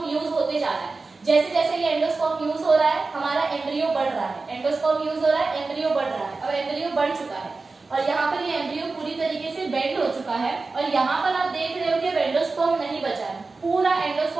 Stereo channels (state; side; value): quieter; left; 3.9 dB